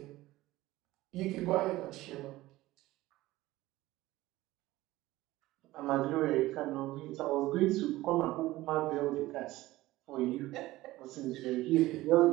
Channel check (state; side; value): quieter; left; 17.5 dB